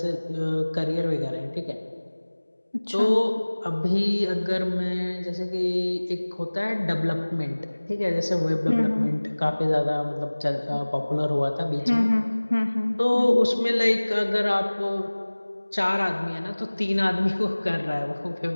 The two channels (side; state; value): both; inverted; correlation -1.00